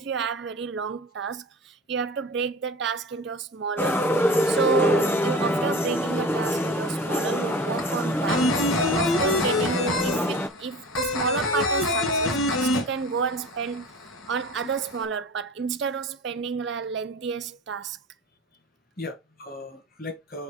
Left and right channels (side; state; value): both; normal; correlation 0.36